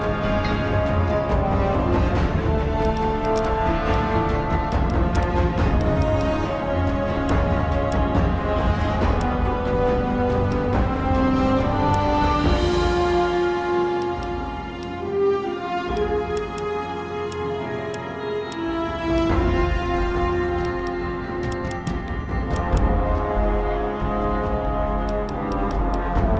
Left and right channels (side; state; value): both; identical; correlation 1.00